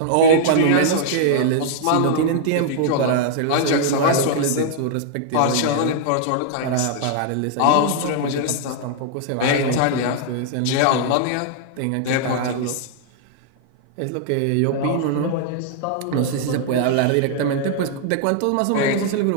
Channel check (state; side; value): different; both; correlation -0.01